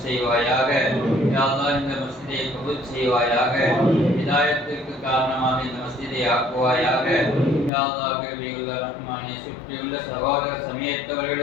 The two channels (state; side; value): drops out; right; at 7.7 s